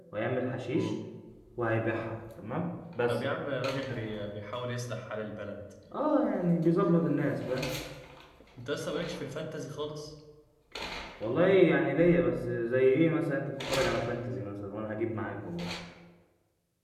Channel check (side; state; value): both; identical; correlation 1.00